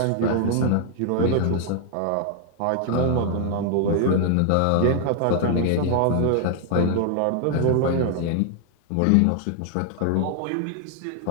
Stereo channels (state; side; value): different; both; correlation 0.00